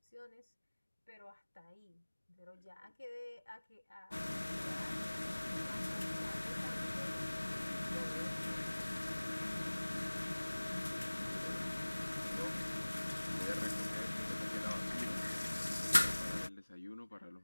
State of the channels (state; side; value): inverted; both; correlation -1.00